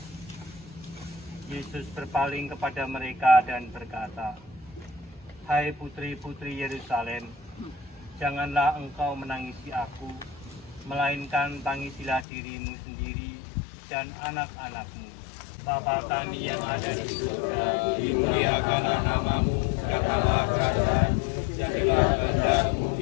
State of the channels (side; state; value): right; drops out; at 12.2 s